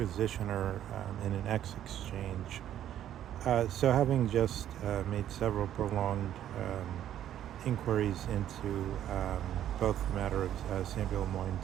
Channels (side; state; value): left; quieter; 11.2 dB